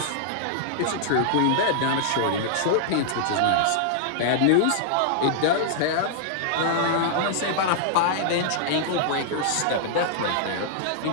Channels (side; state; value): both; different; correlation -0.01